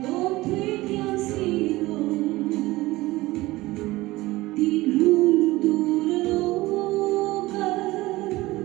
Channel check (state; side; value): quieter; left; 19.2 dB